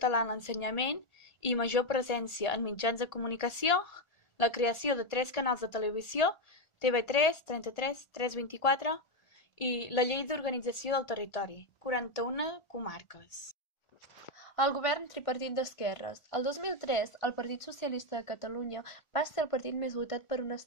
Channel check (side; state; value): right; late; 1.4 ms